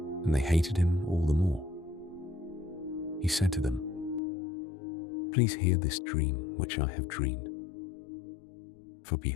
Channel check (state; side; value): drops out; right; at 4.2 s